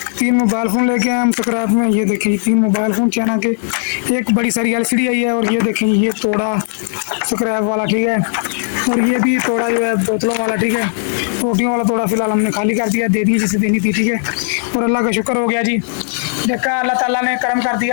3 मोबाइल फ़ोन लेके आए हम स्क्रैप में। ये देखें 3 मोबाइल फ़ोन चाइना के, एक बड़ी सारी LCD आई है और ये देखें ये तोड़ा स्क्रैप वाला, ठीक है। और ये भी तोड़ा जो है बोतलों वाला, ठीक है। रोटियों वाला तोड़ा फिलहाल हमने खाली कर दिया, दे दी जिसे देनी थी, ठीक है। और अल्लाह का शुक्र हो गया जी, देखा अल्लाह ताला ने करम कर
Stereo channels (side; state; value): right; silent; digital silence